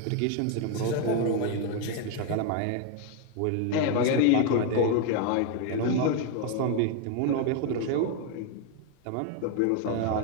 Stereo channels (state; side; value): different; both; correlation 0.01